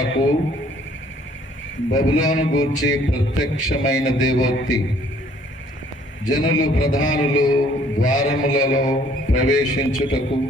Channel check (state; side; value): normal; both; correlation 0.60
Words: బబులోను గూర్చి ప్రత్యక్షమైన దేవోక్తి. జనులు ప్రధానులు ద్వారములలో ప్రవేశించుటకు